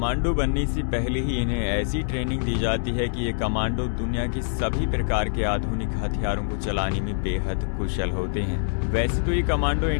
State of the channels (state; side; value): silent; right; 62 dB below the other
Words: बनने से पहले ही इन्हें ऐसी ट्रेनिंग दी जाती है कि ये कमांडो दुनिया के सभी प्रकार के आधुनिक हथियारों को चलाने में बेहद कुशल होते हैं। वैसे तो ये कमांडो